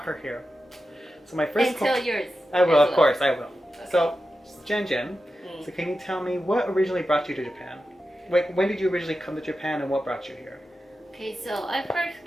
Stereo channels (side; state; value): both; normal; correlation 0.91